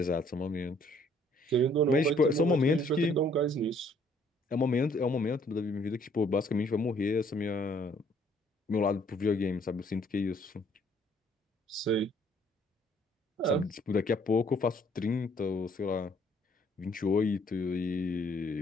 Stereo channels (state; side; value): normal; both; correlation 0.63